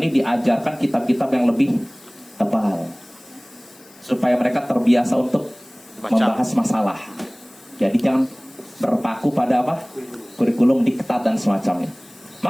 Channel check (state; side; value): noise; left; hiss, 25 dB below the sound